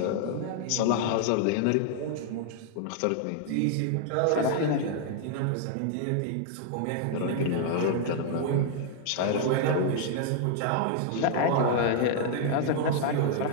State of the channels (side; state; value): both; different; correlation -0.01